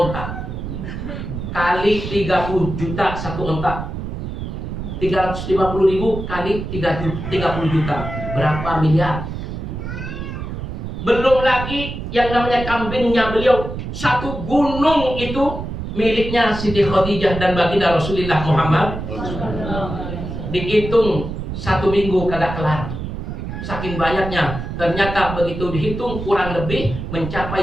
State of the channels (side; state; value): right; noise; rumble, 6 dB below the sound